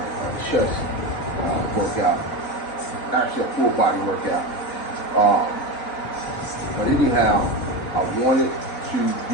chest workout, actually a full body workout. But anyhow, I wanted to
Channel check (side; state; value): right; late; 3.7 ms